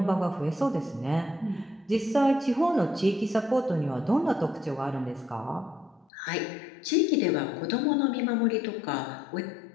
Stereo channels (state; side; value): drops out; right; at 6.1 s